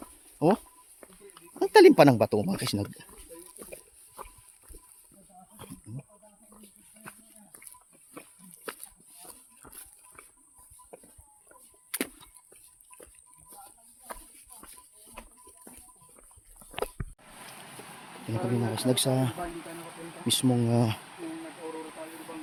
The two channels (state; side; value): identical; both; correlation 1.00